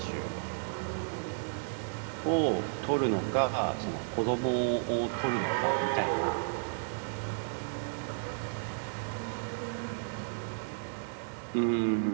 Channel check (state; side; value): silent; left; 56 dB below the other